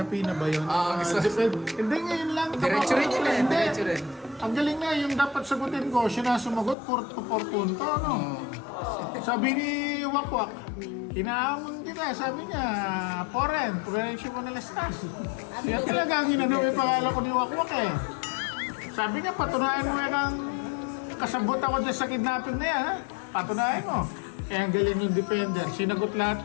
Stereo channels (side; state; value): right; drops out; at 6.8 s